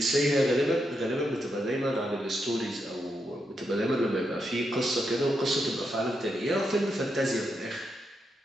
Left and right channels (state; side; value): normal; both; correlation 0.83